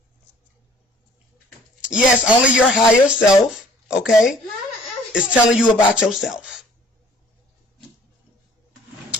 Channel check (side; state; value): both; normal; correlation 0.55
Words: Yes, only your higher self, okay, is telling you about yourself.